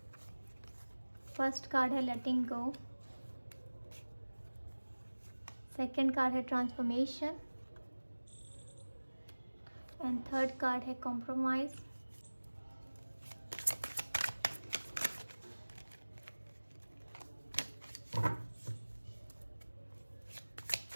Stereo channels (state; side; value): inverted; both; correlation -1.00